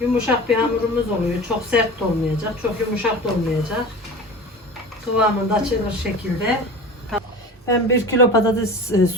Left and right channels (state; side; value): normal; both; correlation 0.35